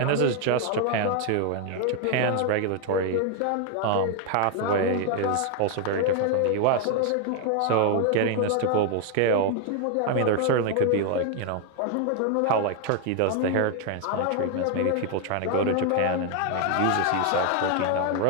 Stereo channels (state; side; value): different; both; correlation 0.00